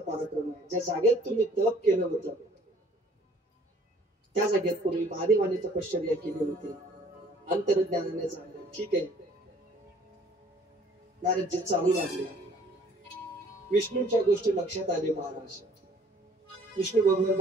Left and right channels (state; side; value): normal; both; correlation 0.56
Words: पराक्रम आहे. ज्या जागेत तुम्ही तप केलं होतं त्या जागेत पूर्वी महादेवाने तपश्चर्या केली होती. अंतर्ज्ञानाने जाणलं. ठीक आहे, नारदजी चालू लागले. विष्णूच्या गोष्टी लक्षात आली महाराज. विष्णू